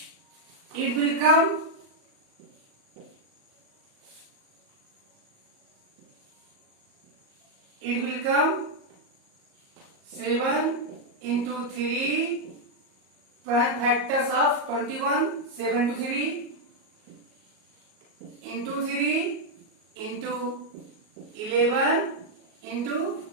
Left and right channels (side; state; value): left; late; 38 ms